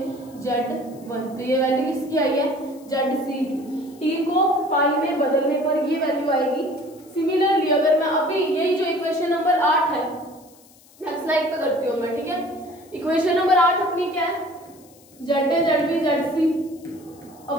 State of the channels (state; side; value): noise; left; hiss, 27 dB below the sound